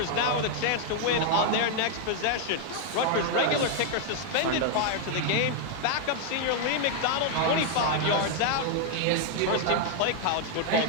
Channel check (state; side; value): different; both; correlation 0.00